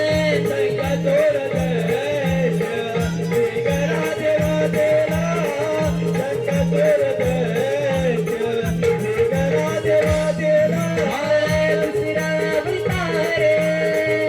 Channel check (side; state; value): both; identical; correlation 1.00